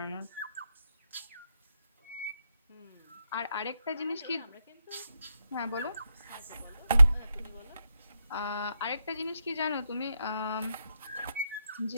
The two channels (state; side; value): inverted; both; correlation -0.83